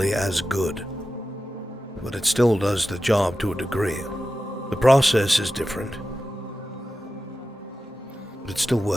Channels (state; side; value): normal; both; correlation 0.92